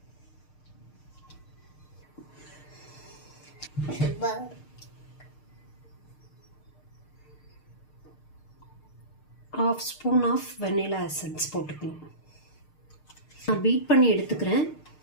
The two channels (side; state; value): right; late; 6.6 ms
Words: ½ ஸ்பூன் ஆஃப் வெனிலா எசன்ஸ் போட்டுக்கணும். நான் பீட் பண்ணி எடுத்துக்கிறேன்.